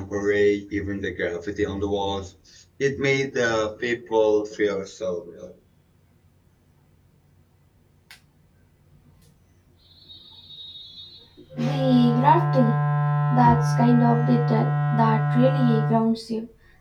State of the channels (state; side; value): identical; both; correlation 1.00